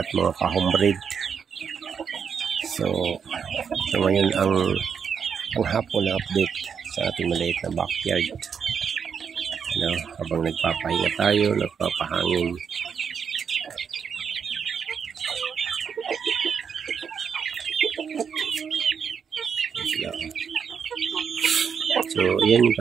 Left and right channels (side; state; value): left; quieter; 6.9 dB